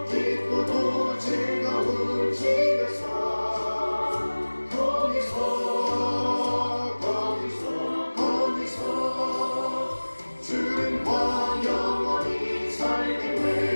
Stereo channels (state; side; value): inverted; both; correlation -1.00